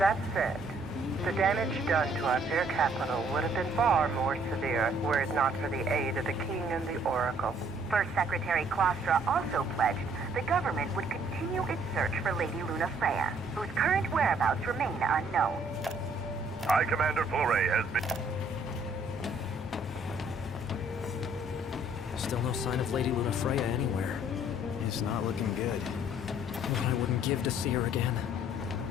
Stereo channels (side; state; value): both; normal; correlation 0.62